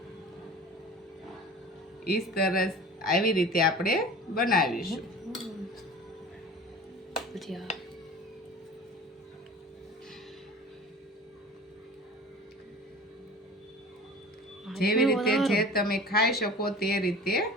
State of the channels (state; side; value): normal; both; correlation 0.39